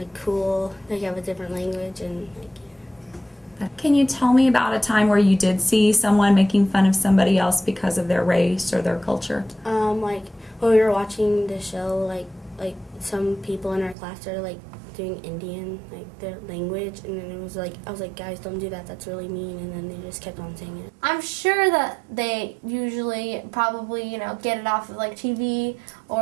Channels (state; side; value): drops out; left; at 14.0 s